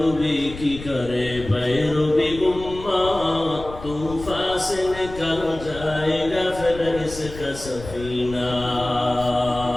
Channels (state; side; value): noise; left; rumble, 13 dB below the sound